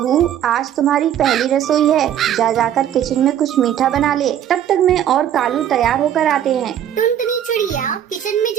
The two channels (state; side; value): quieter; left; 10.5 dB